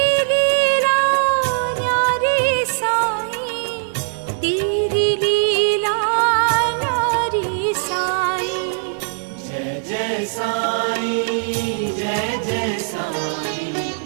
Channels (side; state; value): left; silent; 65 dB below the other